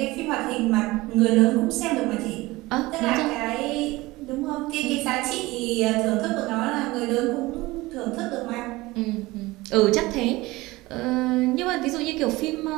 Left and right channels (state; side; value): quieter; left; 20.3 dB